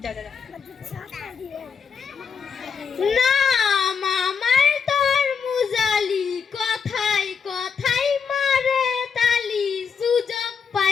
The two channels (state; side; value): quieter; right; 6.2 dB